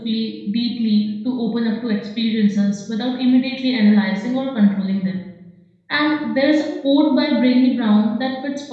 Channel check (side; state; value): both; identical; correlation 1.00